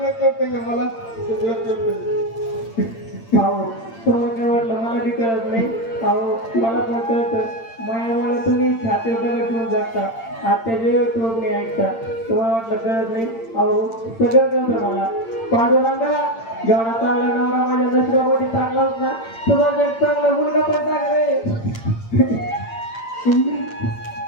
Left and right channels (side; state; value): right; late; 8.8 ms